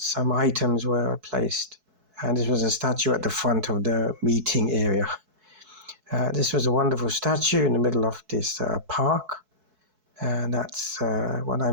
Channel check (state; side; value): late; left; 4.6 ms